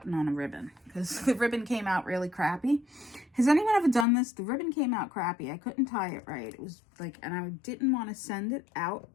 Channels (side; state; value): right; drops out; at 4.0 s